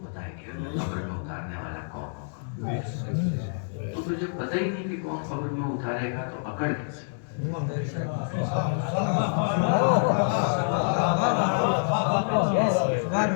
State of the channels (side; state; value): right; silent; digital silence